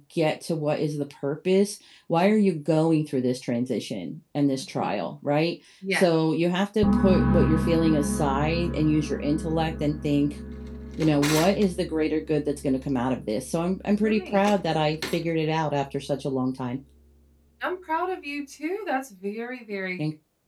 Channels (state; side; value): identical; both; correlation 1.00